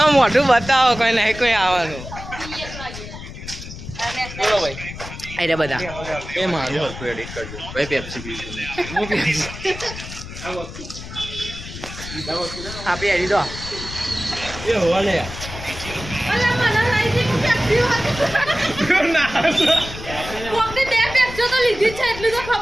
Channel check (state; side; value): noise; left; rumble, 11 dB below the sound